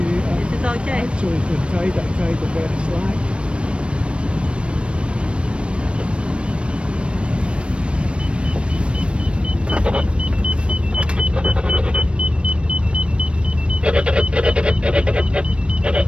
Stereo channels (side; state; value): left; late; 0.058 ms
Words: Is it okay? Actually, the tide, I tied a bit slack.